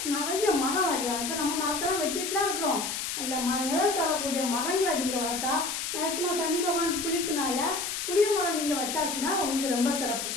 நிறைய மரம் வைக்கலாம். இப்போ நம்ம மரத்தெல்லாம் வெட்டிட்டுலாம் இருக்கிறோம் இல்லை, நிழல் தரக்கூடிய மரங்களை நீங்கள் வளர்த்தா மேக்சிமம் சனி பகவான் புளிப்புனால புளிய மரம் நீங்கள் வச்சாச்சுன்னா உங்களுக்கு ரொம்ப சிறப்பு.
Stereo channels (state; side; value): noise; left; hiss, 3 dB below the sound